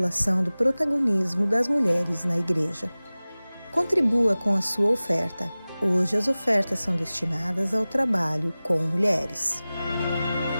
do protagonismo das mulheres na igreja. Contribua com a sua oferta. Hoje as ofertas são destinadas ao trabalho com mulheres.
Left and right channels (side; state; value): both; inverted; correlation -0.98